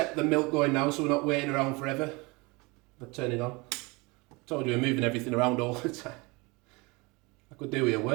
the milk going now, so we're not waiting around forever. I'll turn it on. I told you we're moving everything around all the time. I could do with a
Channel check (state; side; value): quieter; left; 26.1 dB